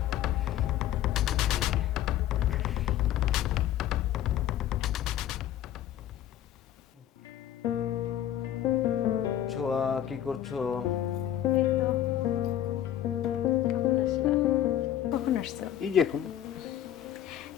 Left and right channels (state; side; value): quieter; right; 11.5 dB